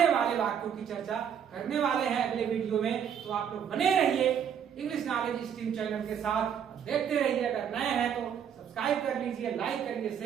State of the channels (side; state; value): left; quieter; 8.4 dB